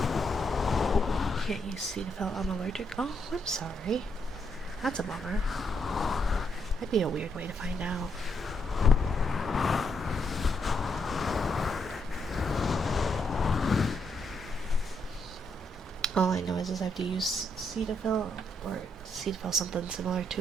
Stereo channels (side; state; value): both; normal; correlation 0.77